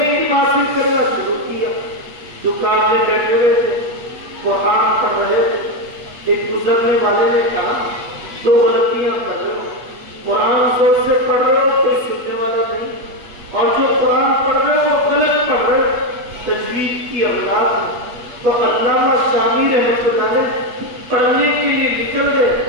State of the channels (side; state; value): left; late; 8.3 ms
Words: علم حاصل کرنا شروع کیا. دکان میں بیٹھے ہوئے تھے، قرآن پڑھ رہے تھے. ایک گزرنے والے نے کہا 2 غلطیاں کر رہے ہو. قرآن زور سے پڑھ رہے ہو، کوئی سننے والا نہیں، اور جو قرآن پڑھ رہے ہو وہ غلط پڑھ رہے ہو، تجوید کی اولاد ہے. تو علامہ شافعی رحمۃ اللہ علیہ پڑھنے کے لیے نکل